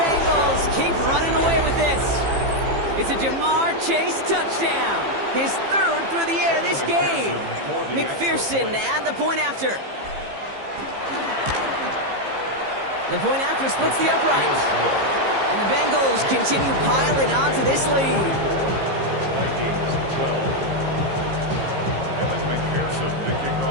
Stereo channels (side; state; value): left; late; 15 ms